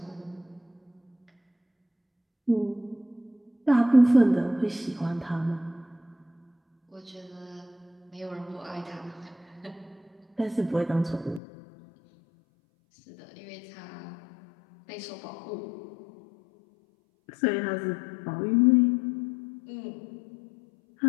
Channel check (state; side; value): drops out; right; at 11.4 s